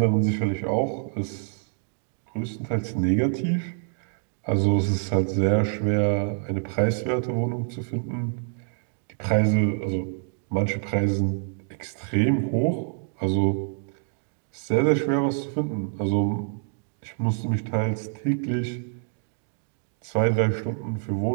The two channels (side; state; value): left; silent; 61 dB below the other